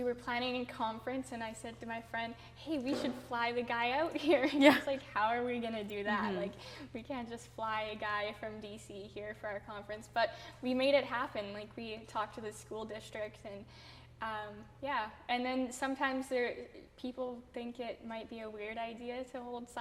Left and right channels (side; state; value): both; identical; correlation 1.00